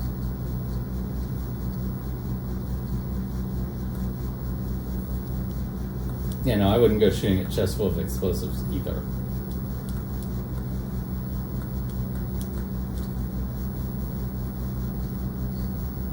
Yeah, no, I wouldn't go shooting at chests full of explosives either.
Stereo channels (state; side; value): noise; left; rumble, 18 dB below the sound